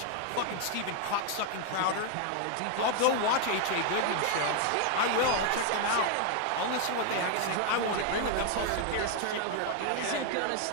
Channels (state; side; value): different; both; correlation 0.00